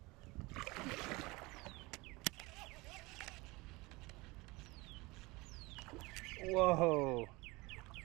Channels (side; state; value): left; quieter; 23.4 dB